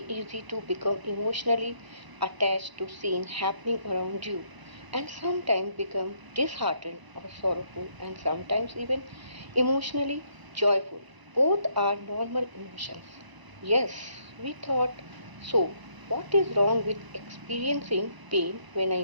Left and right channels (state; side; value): late; left; 1.0 ms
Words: easy to become emotionally attached to scenes happening around you and sometimes become disheartened or sorrowful and sometimes even emotionally joyful. Both are normal emotions. Yes, we thought so. What is wrong with experiencing pain when